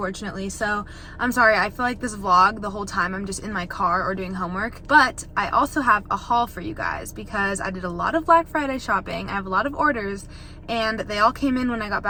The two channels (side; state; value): both; identical; correlation 1.00